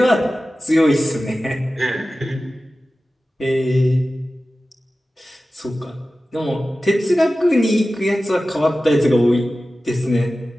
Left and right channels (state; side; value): normal; both; correlation 0.95